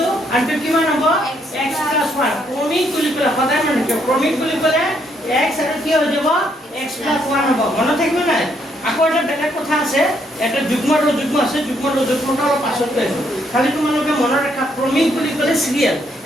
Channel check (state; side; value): normal; both; correlation 0.72